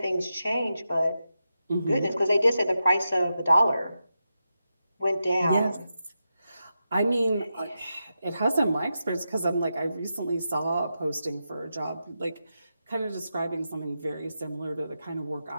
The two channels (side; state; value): both; inverted; correlation -0.88